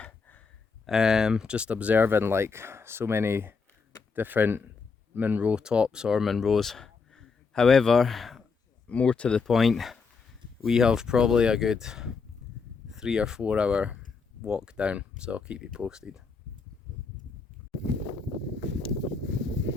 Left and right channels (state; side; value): quieter; right; 5.0 dB